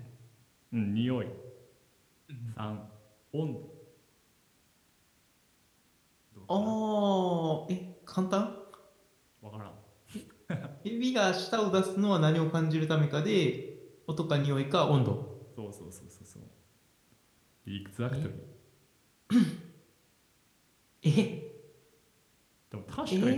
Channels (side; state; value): both; identical; correlation 1.00